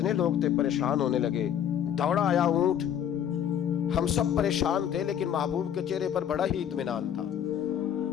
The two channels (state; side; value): quieter; right; 9.5 dB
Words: لوگ تھے پریشان ہونے لگے، دوڑا آیا اونٹ، ہم سب پریشان تھے لیکن محبوب کے چہرے پر بڑا ہی اطمینان تھا۔